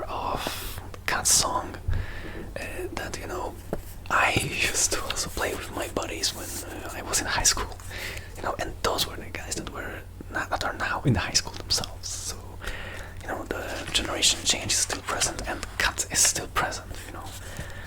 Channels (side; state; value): both; identical; correlation 1.00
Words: of Cat's song that I used to also play with my buddies when I was in high school. And those were the guys that are now in high school themselves. So, the generation change is still present, and Cat is still present.